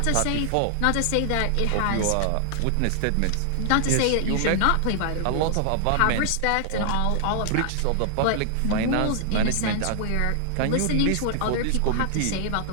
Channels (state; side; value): different; both; correlation 0.00